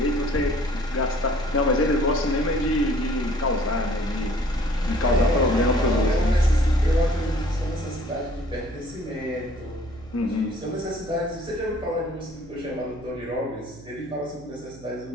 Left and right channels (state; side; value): noise; right; hum, 19 dB below the sound